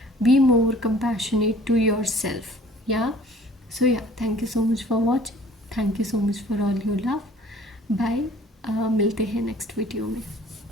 be more compassionate to yourself. Yeah, so yeah, thank you so much for watching. Thank you so much for all your love. Bye. मिलते हैं next video में.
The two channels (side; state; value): both; normal; correlation 0.52